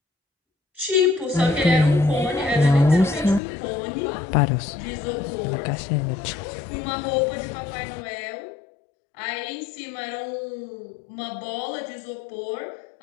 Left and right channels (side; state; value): right; drops out; at 3.4 s